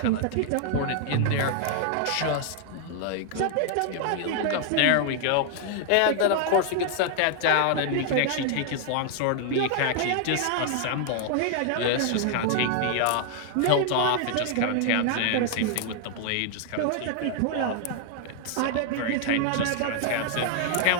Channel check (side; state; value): both; different; correlation 0.00